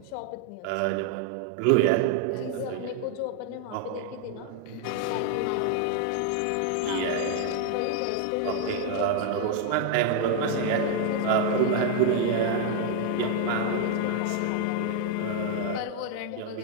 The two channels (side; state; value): both; different; correlation 0.00